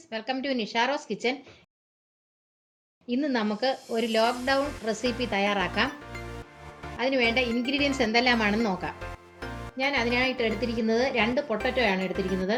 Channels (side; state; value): both; identical; correlation 1.00